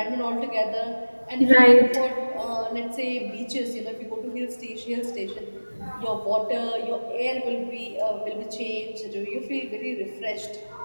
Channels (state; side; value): inverted; both; correlation -1.00